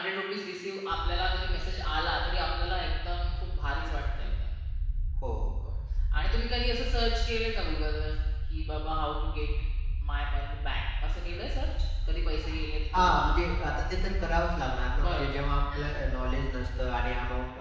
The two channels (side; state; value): both; identical; correlation 1.00